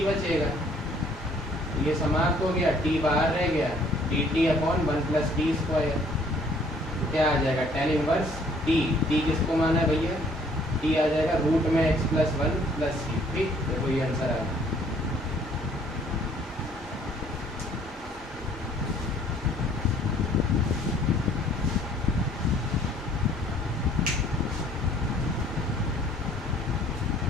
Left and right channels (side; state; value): both; normal; correlation 0.60